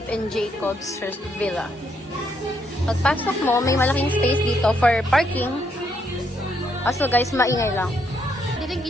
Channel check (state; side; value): normal; both; correlation 0.75